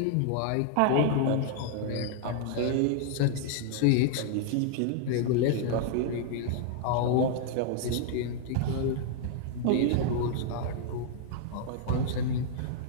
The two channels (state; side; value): different; both; correlation -0.01